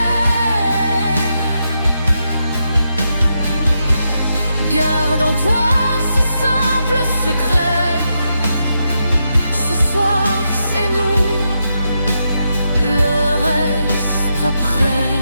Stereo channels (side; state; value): both; inverted; correlation -0.84